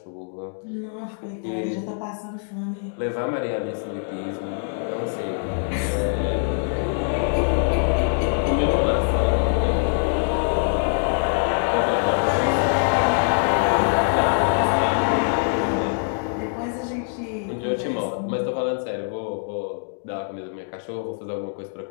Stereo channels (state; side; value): silent; right; digital silence